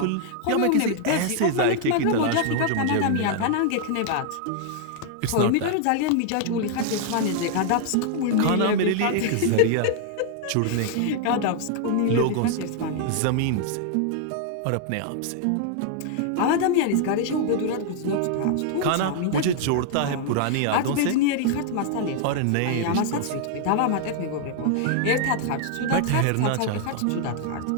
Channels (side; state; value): both; different; correlation 0.00